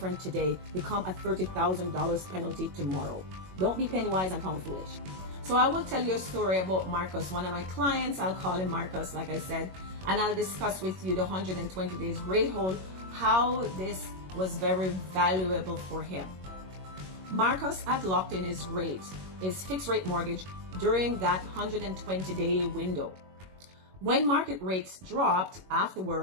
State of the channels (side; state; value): left; late; 21 ms